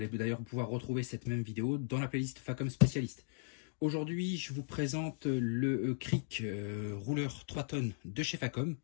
allez d'ailleurs pouvoir retrouver cette même vidéo dans la playlist Facom Spécialiste. Aujourd'hui, je vous présente le cric rouleur 3 tonnes de chez Facom.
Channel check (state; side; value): silent; right; digital silence